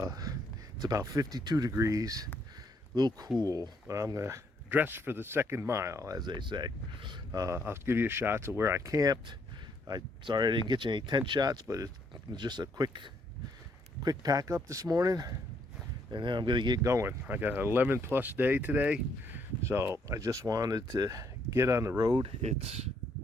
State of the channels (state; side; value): normal; both; correlation 0.71